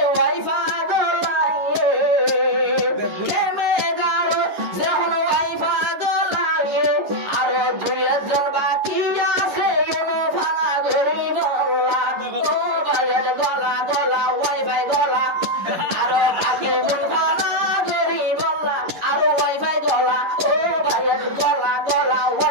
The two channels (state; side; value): late; left; 11 ms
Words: ওয়াইফা গলাইয়ে কেমে গারো যখন ওয়াইফা গলাইয়ে আর দুইজন বাকি আছে এনে ফানা ঘুরি বলা ও ভাইয়ের গলা গলা ওয়াইফাই গলা আরো বাকি জন ফানা ঘুরি বলা আরো ওয়াইফাই গলা ও ভাইয়ের গলা গলা